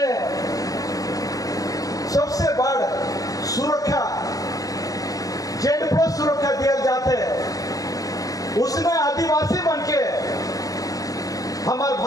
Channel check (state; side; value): late; right; 0.17 ms